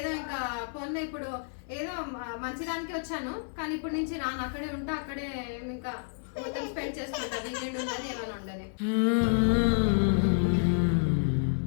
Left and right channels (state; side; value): silent; right; 55 dB below the other